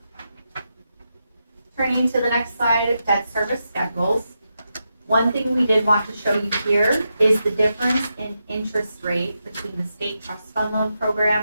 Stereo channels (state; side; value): inverted; both; correlation -0.86